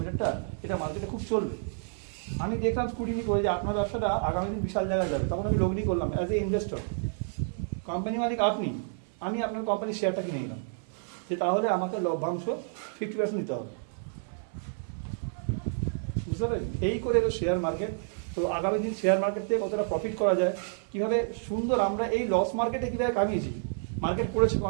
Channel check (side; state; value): left; silent; 56 dB below the other